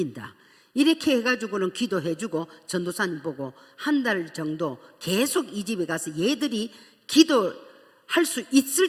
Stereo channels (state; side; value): identical; both; correlation 1.00